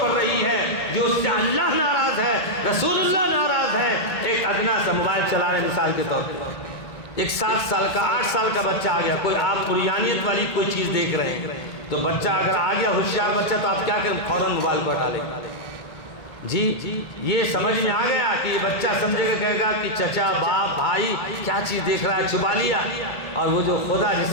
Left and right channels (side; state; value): right; late; 1.6 ms